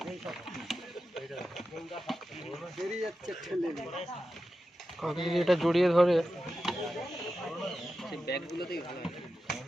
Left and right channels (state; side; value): normal; both; correlation 0.91